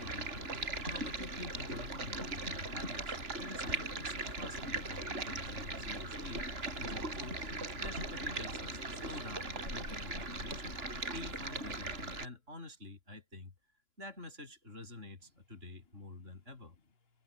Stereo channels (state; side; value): late; left; 2.9 ms